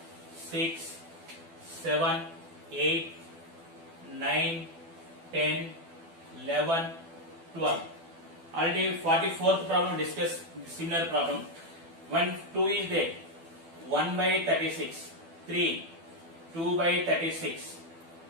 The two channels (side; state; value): left; late; 12 ms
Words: 6, 7, 8, 9, 10, 11, 12. Already 44th problem discuss similar problem. When 2 is there, 1 by 36, 3, 2 by 36,